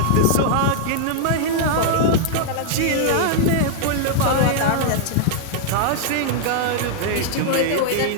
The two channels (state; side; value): different; both; correlation -0.01